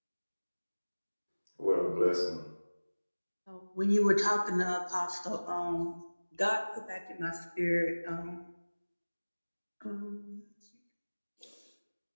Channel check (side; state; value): both; inverted; correlation -1.00